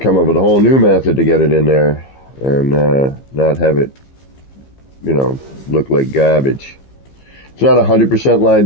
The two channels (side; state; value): right; late; 15 ms